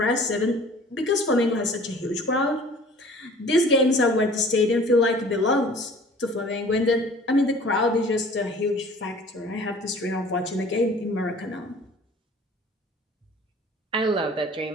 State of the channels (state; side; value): normal; both; correlation 0.48